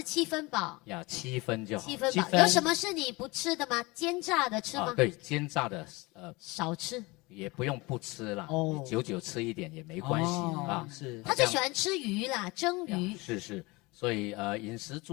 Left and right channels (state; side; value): quieter; right; 23.9 dB